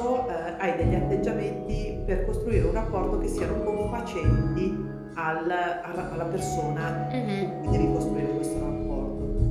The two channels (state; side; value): identical; both; correlation 1.00